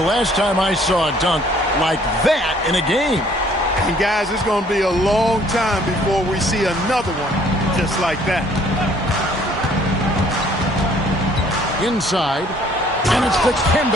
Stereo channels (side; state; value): both; normal; correlation 0.60